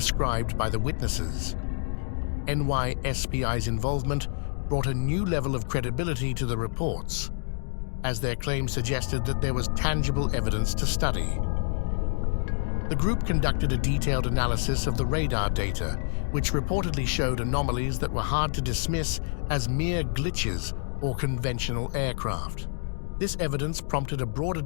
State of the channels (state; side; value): silent; right; digital silence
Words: by the witnesses. NYSPI's involvement brought a new level of credibility to the reports, as their claims suggested that there was tangible evidence to study. The group conducted a detailed analysis of the radar data, which reportedly showed anomalies that were hard to dismiss as mere glitches or conventional aircraft. This evidence prompted a broader